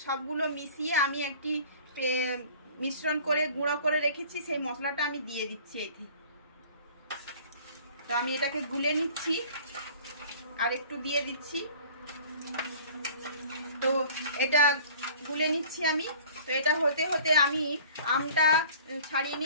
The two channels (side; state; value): both; inverted; correlation -0.47